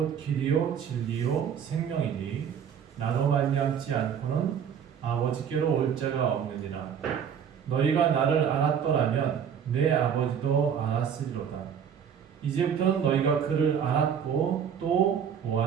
길이요 진리요 생명이니 나로 말미암지 않고는 아버지께로 올 자가 없느니라. 너희가 나를 알았더라면 내 아버지도 알았으리로다. 이제부터는 너희가 그를 알았고 또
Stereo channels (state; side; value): quieter; left; 7.9 dB